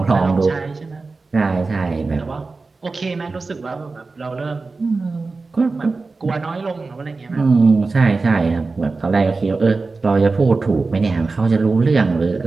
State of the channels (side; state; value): left; quieter; 3.9 dB